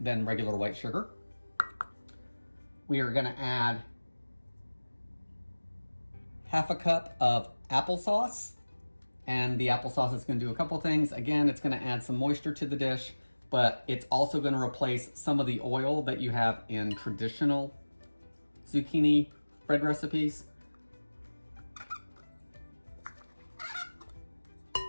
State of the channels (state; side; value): inverted; both; correlation -1.00